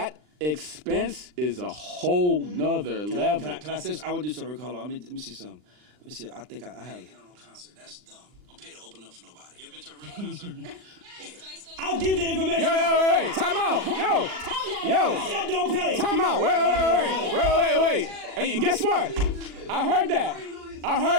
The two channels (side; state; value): left; late; 39 ms